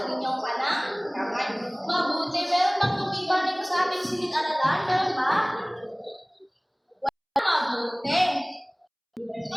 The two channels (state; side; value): identical; both; correlation 1.00